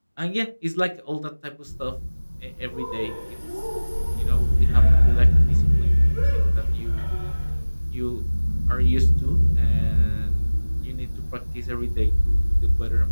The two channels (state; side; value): inverted; both; correlation -1.00